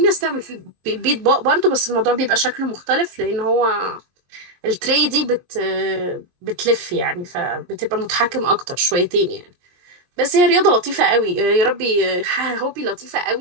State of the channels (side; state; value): left; late; 22 ms